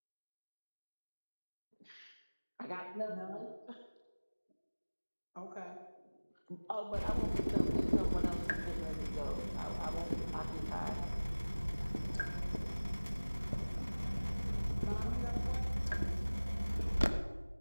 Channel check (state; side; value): inverted; both; correlation -1.00